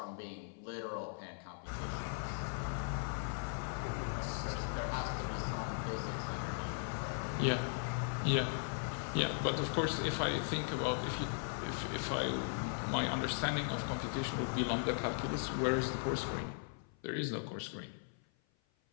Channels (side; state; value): right; silent; 52 dB below the other